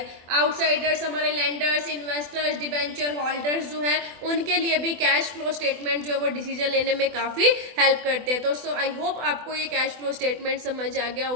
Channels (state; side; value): late; left; 24 ms